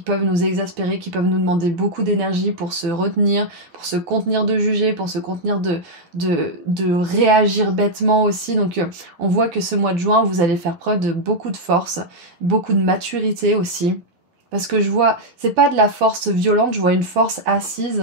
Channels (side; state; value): left; late; 12 ms